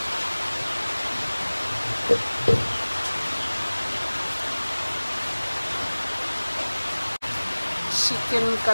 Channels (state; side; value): inverted; both; correlation -1.00